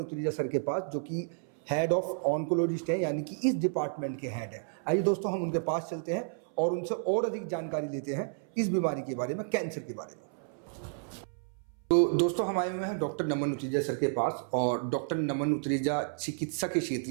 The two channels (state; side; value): silent; left; 57 dB below the other